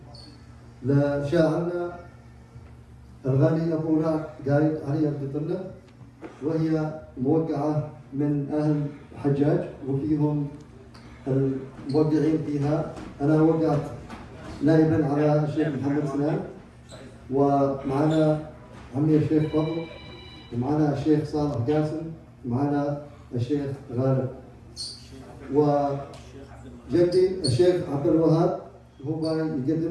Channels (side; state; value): both; identical; correlation 1.00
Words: لشاعرنا الغالي أبو رعد قايد علي القطرنة، وهي موقعة من أهل الحجاج وفيهم الموقعين فيها. أنا وقعت نائبا على الشيخ محمد سنان، ومعنا عمي الشيخ فضل، ومعنا الشيخ صالح قاسم، ومعنا الشيخ غالب، وجدي الشيخ عبد الوهاب هو